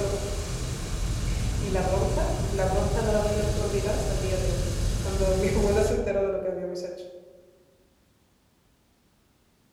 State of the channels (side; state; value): both; identical; correlation 1.00